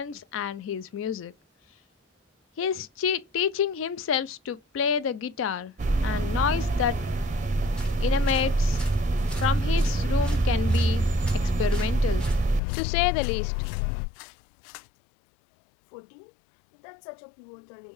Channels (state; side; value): drops out; right; at 12.6 s